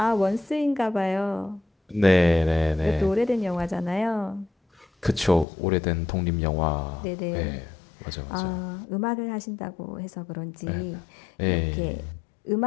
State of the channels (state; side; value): drops out; right; at 5.5 s